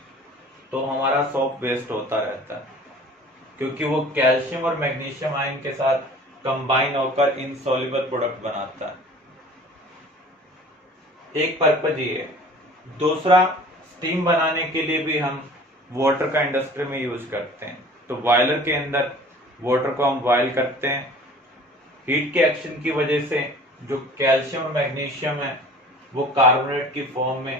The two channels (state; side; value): normal; both; correlation 0.46